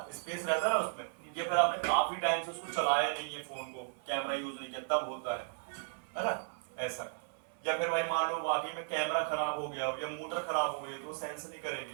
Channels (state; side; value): silent; left; 54 dB below the other